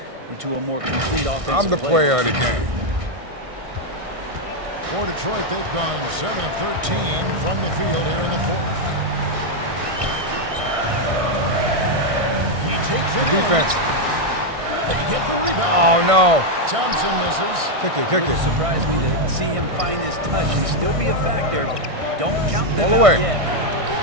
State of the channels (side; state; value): left; late; 1.6 ms